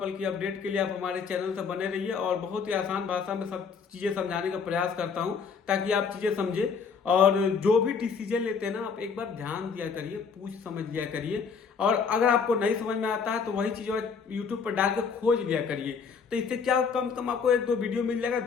की अपडेट के लिए आप हमारे चैनल से बने रहिए और बहुत ही आसान भाषा में सब चीजें समझाने का प्रयास करता हूँ ताकि आप चीजें समझे। और जो भी डिसीजन लेते हैं ना आप एक बार ध्यान दिया करिए, पूछ समझ लिया करिए। और अगर आपको नहीं समझ में आता है तो वही चीज यूट्यूब पर डाल के खोज लिया करिए। तो इससे क्या कम से कम आपको एक दो वीडियो मिल जाएगा,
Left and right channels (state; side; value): quieter; right; 5.8 dB